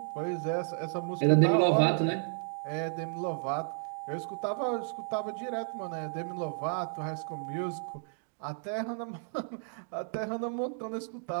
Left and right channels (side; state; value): left; silent; 56 dB below the other